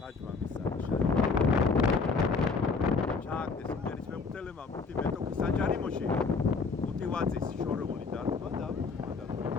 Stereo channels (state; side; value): quieter; right; 4.5 dB